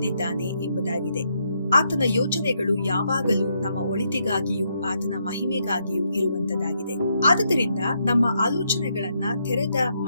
ಎಂಬುದಾಗಿದೆ. ಆತನ ಯೋಜನೆಗಳು ಯಾವಾಗಲೂ ನಮ್ಮ ಒಳಿತಿಗಾಗಿಯೂ ಆತನ ಮಹಿಮೆಗಾಗಿಯೂ ಇರುವಂತದ್ದಾಗಿದೆ. ಆದುದರಿಂದ ನಮ್ಮ ಆಲೋಚನೆಗಳನ್ನ ತೆರೆದ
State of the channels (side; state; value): both; inverted; correlation -0.77